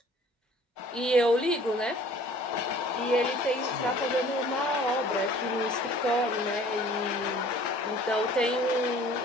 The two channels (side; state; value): both; normal; correlation 0.51